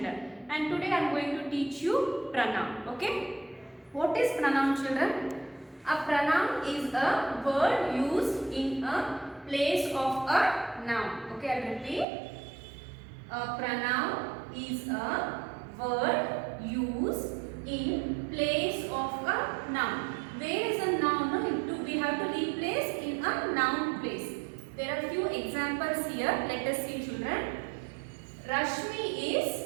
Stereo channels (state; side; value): drops out; left; at 12.1 s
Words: And today I am going to teach you pronoun. Okay. What is pronoun, children? A pronoun is a word used in a place of a noun. Okay, I repeat. A pronoun is a word used in place of a noun. Where is a noun? No, we have to replace in a noun place. There are few examples here. Let us see, children. Rashmi